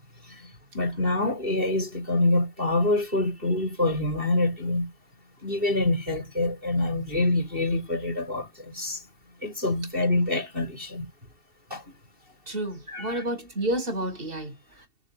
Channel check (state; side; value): late; left; 2.7 ms